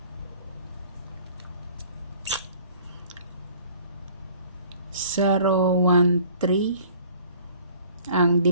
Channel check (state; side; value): inverted; both; correlation -0.52